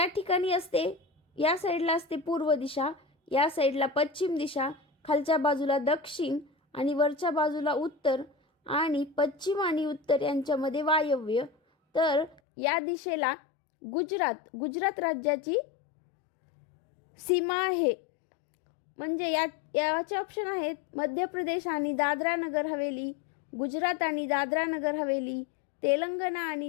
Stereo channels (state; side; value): drops out; right; at 12.4 s